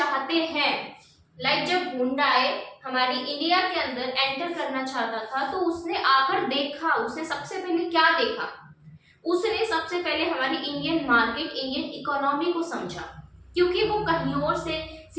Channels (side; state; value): both; identical; correlation 1.00